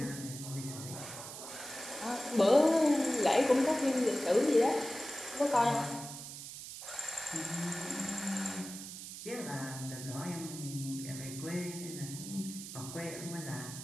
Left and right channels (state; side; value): noise; right; hiss, 10 dB below the sound